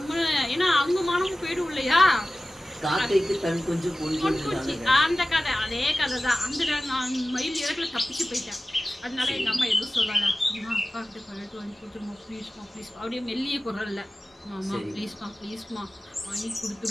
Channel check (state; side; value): normal; both; correlation 0.96